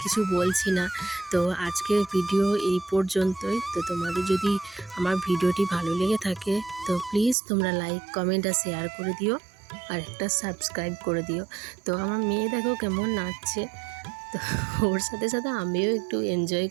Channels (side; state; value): left; drops out; at 7.4 s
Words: কিছু বলছি না, তো আজকের ভিডিও এই পর্যন্তই। তো তোমাদের যদি আমার ভিডিওটি ভালো লেগে থাকে তো প্লিজ তোমরা লাইক, কমেন্ট আর শেয়ার করে দিও, আর একটা সাবস্ক্রাইব করে দিও। তো আমার মেয়ে দেখো কেমন নাচছে, তো ওর সাথে সাথে আমিও একটু এনজয়